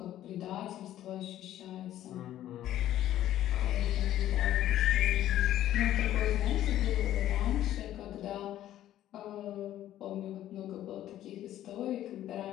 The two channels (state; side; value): quieter; right; 12.7 dB